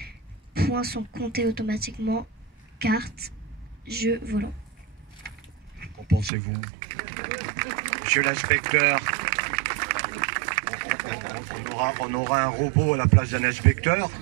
points sont comptés automatiquement, cartes, jeux volants. Qu'en pensez-vous? Monsieur l'inspecteur, on aura un robot à la place d'un inspecteur,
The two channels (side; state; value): left; drops out; at 6.3 s